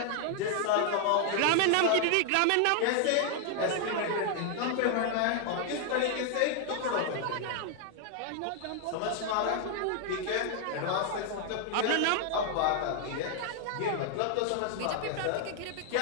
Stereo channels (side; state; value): both; different; correlation 0.00